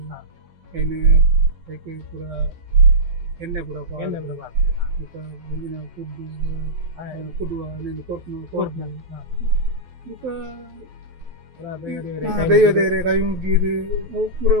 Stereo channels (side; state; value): left; late; 12 ms